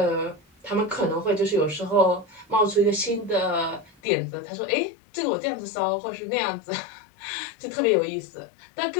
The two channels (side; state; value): right; drops out; at 3.9 s